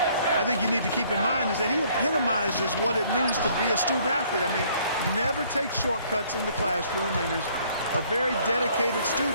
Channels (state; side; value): inverted; both; correlation -0.61